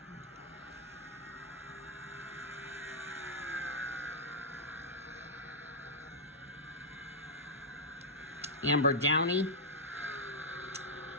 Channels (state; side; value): normal; both; correlation -0.07